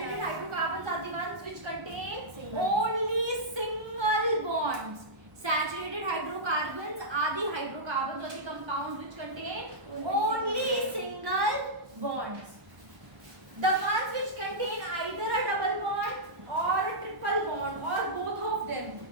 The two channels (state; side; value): late; left; 1.0 ms